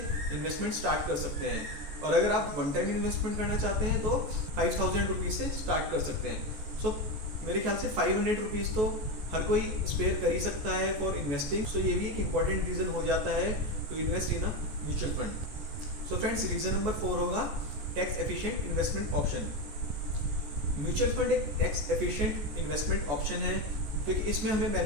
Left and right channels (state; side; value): late; left; 14 ms